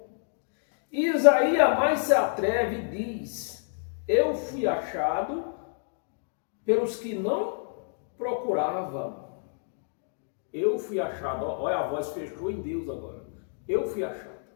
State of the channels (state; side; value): silent; right; digital silence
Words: E Isaías mais se atreve e diz: eu fui achado pelos que não procuravam. Eu fui achado. Olha, a voz fechou em Deus agora. Eu fui achado.